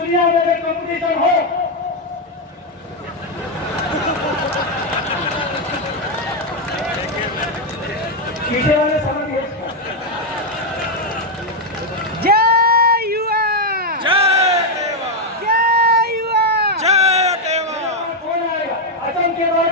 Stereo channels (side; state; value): both; normal; correlation 0.02